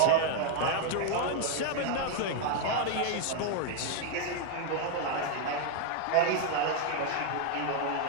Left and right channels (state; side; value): different; both; correlation 0.01